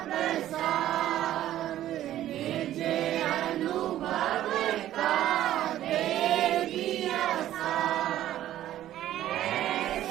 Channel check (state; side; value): quieter; left; 13.0 dB